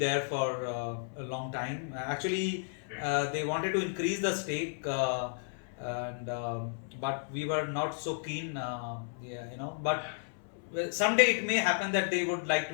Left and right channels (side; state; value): right; silent; 56 dB below the other